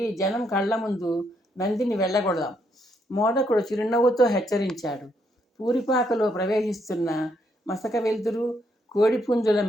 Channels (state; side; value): normal; both; correlation 0.75